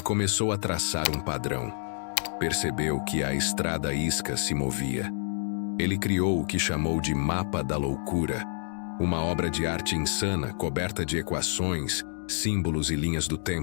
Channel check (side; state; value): right; silent; digital silence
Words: a traçar um padrão. Percebeu que a estrada isca se movia. Ele criou o que chamou de Mapa da Loucura, uma obra de arte insana coberta de equações, símbolos e linhas do